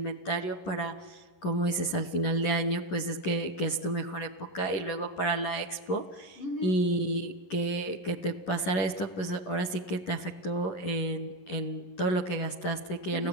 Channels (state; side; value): late; right; 11 ms